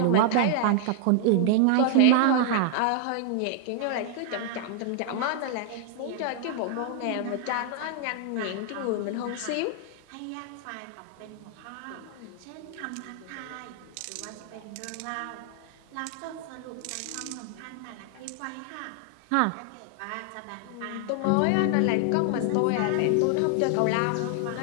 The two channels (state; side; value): different; both; correlation 0.00